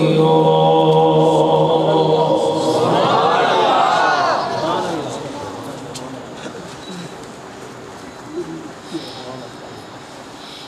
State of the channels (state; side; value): identical; both; correlation 1.00